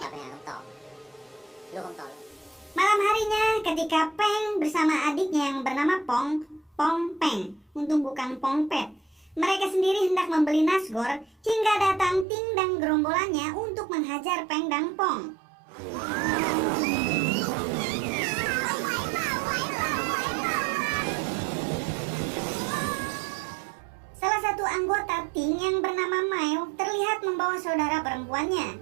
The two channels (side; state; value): left; drops out; at 12.2 s